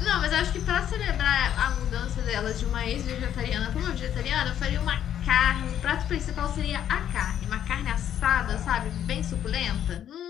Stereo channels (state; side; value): quieter; right; 10.2 dB